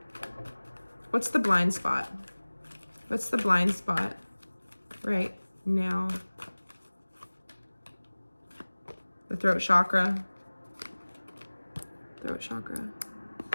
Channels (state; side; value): inverted; both; correlation -1.00